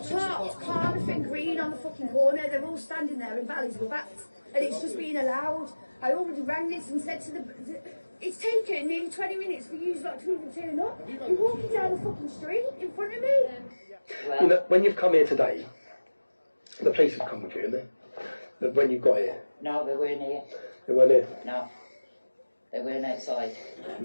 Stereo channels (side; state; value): both; inverted; correlation -1.00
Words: parked Confronting Green on the fucking corner. They're all standing there in valleys with bats. And it's just being allowed. I already rang this and said to the... It's taken nearly 20 minutes for you lot to even turn up. You're walking down the fucking street in front of me. You know, when you've come here today, the police have come with you, haven't they? When you got here. No, they weren't here. They weren't here? No. They weren't outside.